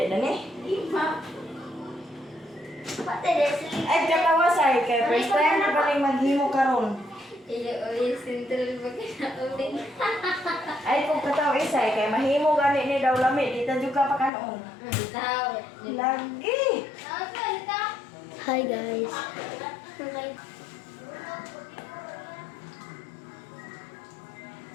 na ni? Pati Leslie. Ay, katawasay. Kaya first time na paling maghimo karon. Iyo, sentral ba ka na ulit? Ay, kung kataw isay, kaya mahimo gani ni daw lami. Dito juga pa kanon. Tao. Lagi. Hi guys. Okay.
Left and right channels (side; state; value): right; drops out; at 14.3 s